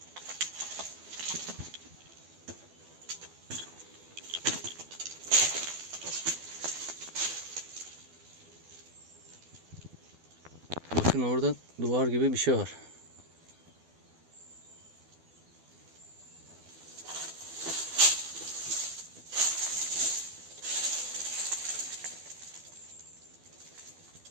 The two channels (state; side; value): late; left; 12 ms